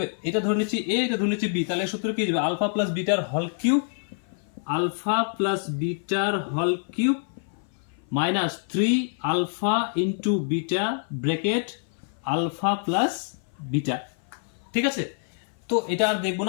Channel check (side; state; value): right; silent; 56 dB below the other